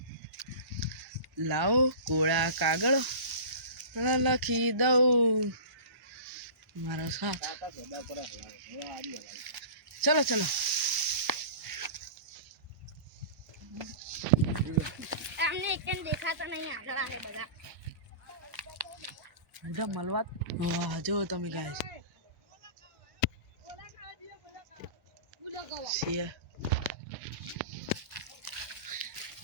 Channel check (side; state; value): left; late; 1.0 ms